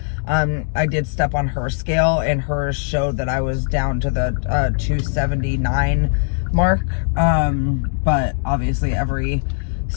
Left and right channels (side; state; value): right; silent; digital silence